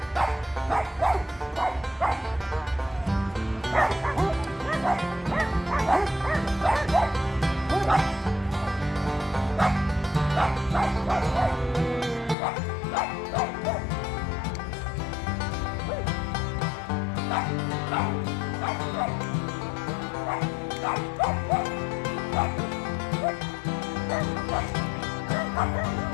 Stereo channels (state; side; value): drops out; right; at 12.4 s